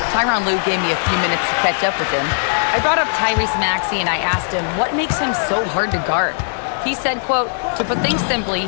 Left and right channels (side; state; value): right; silent; digital silence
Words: Tyronn Lue gave me a few minutes to catch up with him. I brought up Tyrese Maxey and I asked him what makes him so hard to guard. He said, quote, to put things simply,